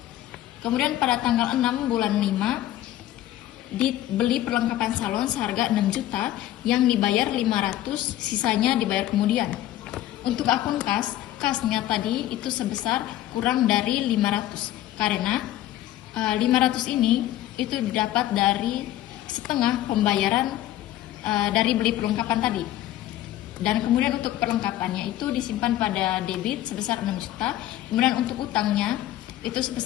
Kemudian pada tanggal 6 bulan 5 dibeli perlengkapan salon seharga 6 juta yang dibayar 500, sisanya dibayar kemudian. Untuk akun kasnya tadi itu sebesar kurang dari 500 karena 500 ini itu didapat dari setengah pembayaran dari beli perlengkapan tadi. Dan kemudian untuk perlengkapannya itu disimpan pada debit sebesar 6 juta. Kemudian untuk utangnya itu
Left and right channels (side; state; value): right; quieter; 13.7 dB